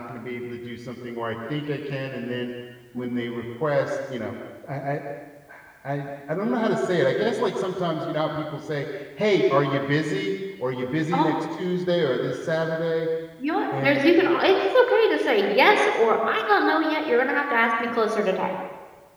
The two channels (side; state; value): both; identical; correlation 1.00